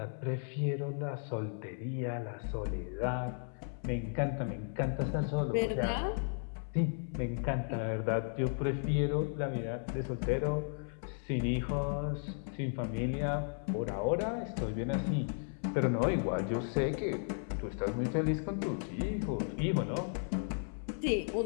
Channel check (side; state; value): right; silent; 54 dB below the other